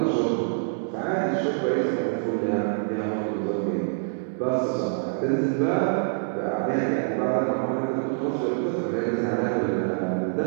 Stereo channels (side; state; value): left; silent; 61 dB below the other